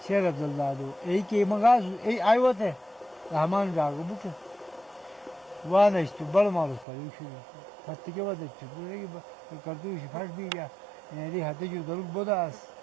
शेर अब्दुल्ला दो एक के मंगा ए आयो थे रहमान जागो बुक वाह नहीं तो बड़ा मालूम पर शुरू फट के बाद पूरे की करतू फट भी गया ये हाथे जो दरुक बोदास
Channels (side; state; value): left; drops out; at 6.9 s